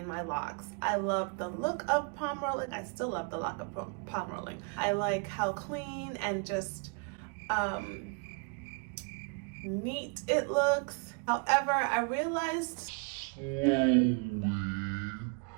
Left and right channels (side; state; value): left; quieter; 36.2 dB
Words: my locks. I love the look of palm rolling. I still love the look of palm rolling. I like how clean and just neat it looks. However, I realized